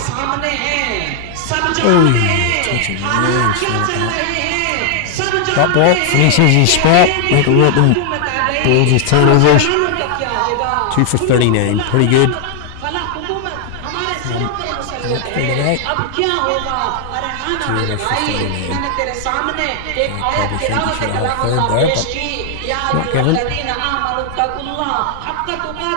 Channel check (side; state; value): both; different; correlation 0.00